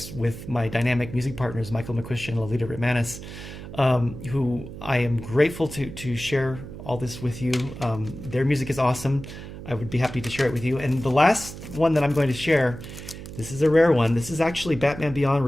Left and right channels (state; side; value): noise; right; hum, 12 dB below the sound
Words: with my dynamic music partners, Michael McQuistion and Lolita Ritmanis, who I am grateful to share all this with you. Their music is awesome. I would be happy to share it with you. And the last one that I'm going to share, this is a rare one. This is actually Batman Beyond: